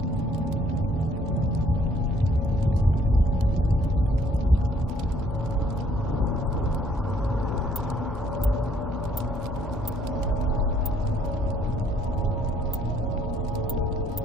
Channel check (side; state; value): both; normal; correlation 0.64